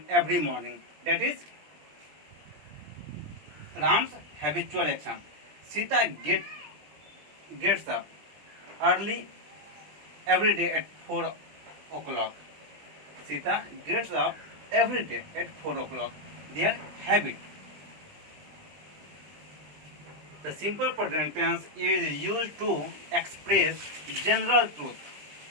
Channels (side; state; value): left; late; 20 ms